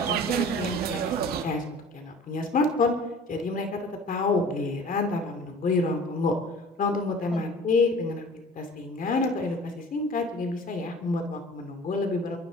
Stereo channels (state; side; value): normal; both; correlation 0.44